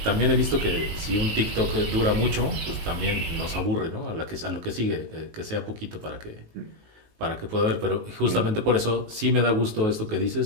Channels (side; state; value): left; late; 19 ms